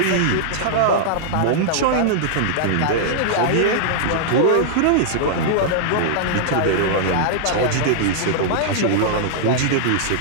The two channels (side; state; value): both; different; correlation -0.01